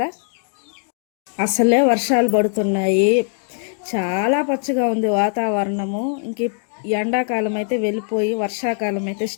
అసలే వర్షాలు పడుతున్నాయి. చాలా పచ్చగా ఉంది వాతావరణము. ఇంక ఎండాకాలం అయితే వెళ్ళిపోయి వర్షాకాలం అయితే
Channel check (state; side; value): silent; right; 57 dB below the other